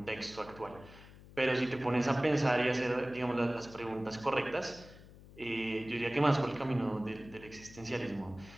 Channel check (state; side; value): noise; left; hum, 19 dB below the sound